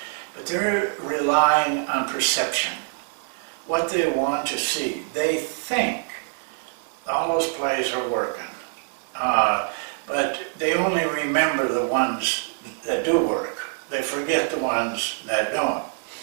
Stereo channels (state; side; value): silent; left; digital silence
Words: But they're relying on perception, what they want to see. They think all those plays are working, but they only remember the ones that do work. They forget the ones that don't.